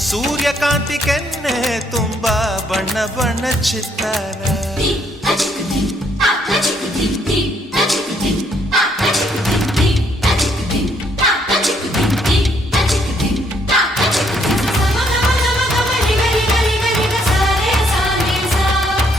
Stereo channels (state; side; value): normal; both; correlation 0.70